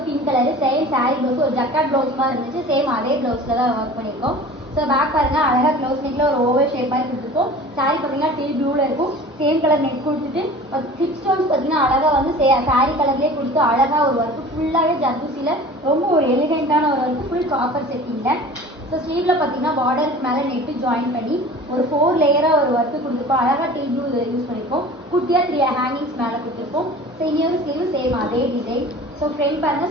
pink colour same sorry blouse, ஒரு ஜக்காட் ப்ளவுஸ் மாதிரி இருந்துச்சு. சேம் அதே ப்ளவுஸ்ல தான் ஒர்க் பண்ணியிருக்கோம். ஸோ பேக் பாருங்க அழகா க்ளோஸ் நெக்ல ஒரு ஓவர் ஷேப் மாதிரி கொடுத்துருக்கோம். சாரி பார்த்தீங்கன்னா டீல் ப்ளூல இருக்கும். சேம் கலர் நெக் கொடுத்துட்டு ஹிப் ஸ்டோன்ஸ் பார்த்தீங்கன்னா அழகா வந்து சாரி கலர்லேயே கொடுத்து அழகா ஒரு ஒர்க் ஃபுல்லாகவே ஜர்தூசியில் ரொம்ப ஒரு எலிகென்ட்டான ஒரு ஒர்க் ஃபுல் காப்பர் செட்டிங்ல. ஸோ ஸ்லீவ்ல பார்த்தீங்கன்னா பார்டருக்கு மேலே நெட்டு ஜாயின் பண்ணி ஒரு 4 லேயராக ஒரு ஒர்க்கு கொடுத்துருப்போம். அழகாக டீல் ப்ளூ யூஸ் பண்ணியிருக்கோம். குட்டியாக 3 ஹேங்கிங்ஸ் மேலே கொடுத்துருப்போம். ஸோ இன்னொரு ஸ்லீவ் சேம் அதே டிசைன். ஸோ ஃப்ரண்ட் பாருங்க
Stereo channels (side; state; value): both; normal; correlation 0.41